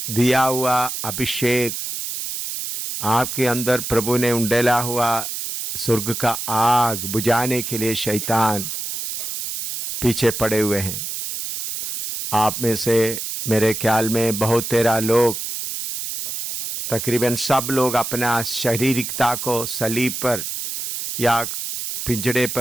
दिया हुआ अभिषेक, आपके अंदर प्रभु ने उंडेला हुआ स्वर्ग का आग बुझाने के लिए शैतान पीछे पड़े हुए हैं। आप में से मेरे ख्याल में बहुत तेरा लोग, तकरीबन सब लोग अपना शारीरिकता को सलीब पर या पिंजड़े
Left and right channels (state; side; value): noise; right; hiss, 5 dB below the sound